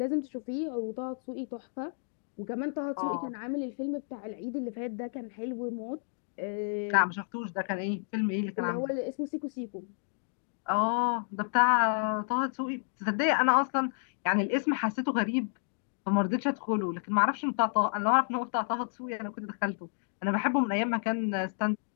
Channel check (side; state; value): right; silent; digital silence